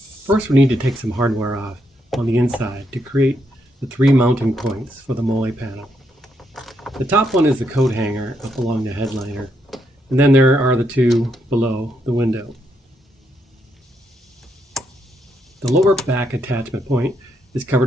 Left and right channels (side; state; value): both; normal; correlation 0.78